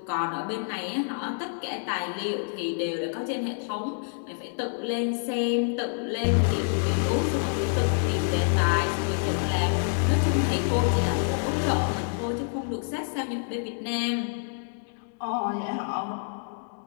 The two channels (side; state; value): right; silent; digital silence